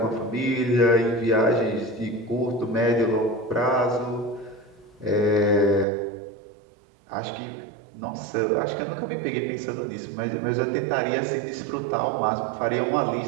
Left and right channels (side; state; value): left; drops out; at 5.9 s